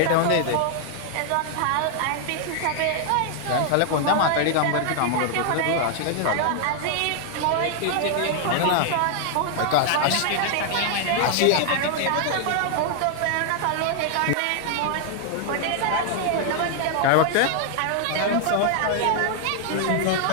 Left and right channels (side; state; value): both; different; correlation 0.00